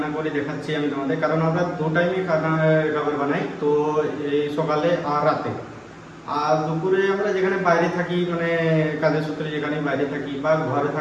করে দেখাচ্ছি আমি তোমাদের, কারণ আমরা দু টাইমে খাবার বানাই, তো এই সকালে আর রাতে। আর দুপুরে আমরা যেখানে বাইরে থাকি, মানে কাজের সূত্রে যেখানে বাইরে থাকি, বা ঘরে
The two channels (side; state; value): both; identical; correlation 1.00